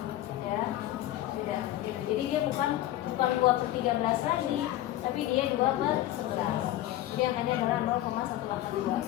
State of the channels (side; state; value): right; quieter; 14.4 dB